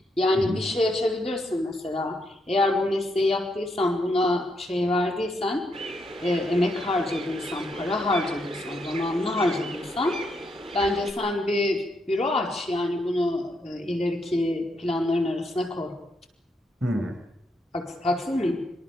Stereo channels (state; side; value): normal; both; correlation 0.78